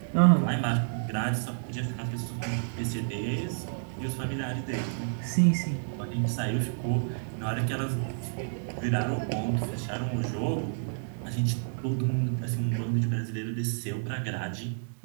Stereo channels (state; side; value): silent; left; digital silence